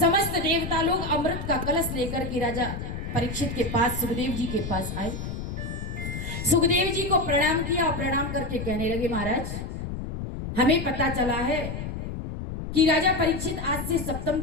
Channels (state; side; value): noise; left; rumble, 6 dB below the sound